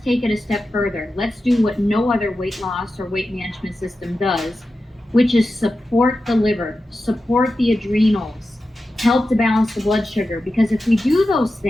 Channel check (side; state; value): both; normal; correlation 0.92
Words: take it a step further. Let's do what no other weight loss or weight management system does, which is support the liver, support the adrenals, help to balance the blood sugar. Because if we do those